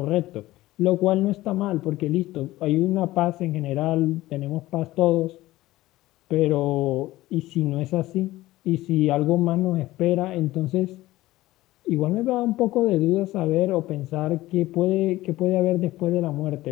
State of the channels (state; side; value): quieter; right; 17.1 dB